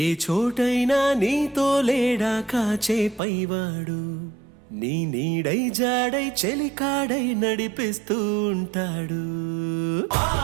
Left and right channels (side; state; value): left; drops out; at 3.2 s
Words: ఏ చోటైనా నీతో లేడా కాచే పైవాడు, నీ నీడై జాడై చెలికాడై నడిపిస్తూ ఉంటాడు.